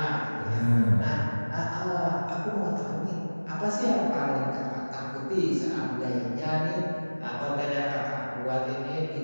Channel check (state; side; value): inverted; both; correlation -1.00